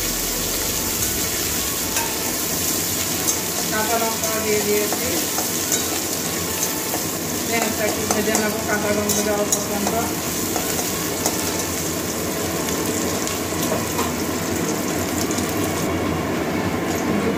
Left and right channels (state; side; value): identical; both; correlation 1.00